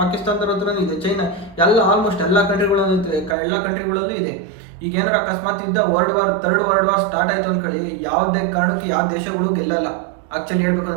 ಪಾಕಿಸ್ತಾನದವ್ರ ಹತ್ರನೂ ಇದೆ, ಚೈನಾ, ಎಲ್ಲ ಆಲ್ಮೋಸ್ಟ್ ಎಲ್ಲ ಕಂಟ್ರಿಗಳಲ್ಲೂ ಇದೆ. ಈಗ ಏನಾರ ಅಕಸ್ಮಾತ್ ಯುದ್ಧ ಥರ್ಡ್ ವರ್ಲ್ಡ್ ವಾರ್ ಸ್ಟಾರ್ಟ್ ಆಯ್ತು ಅಂದ್ಕೊಳ್ಳಿ, ಯಾವುದೇ ಕಾರಣಕ್ಕೆ ಯಾವ ದೇಶಗಳು ಗೆಲ್ಲಲ್ಲ. ಆಕ್ಚುಲಿ ಹೇಳ್ಬೇಕು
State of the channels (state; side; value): drops out; left; at 3.4 s